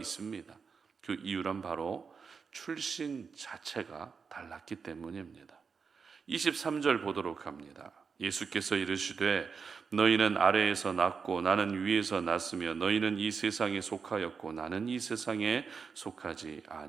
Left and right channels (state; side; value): quieter; left; 5.6 dB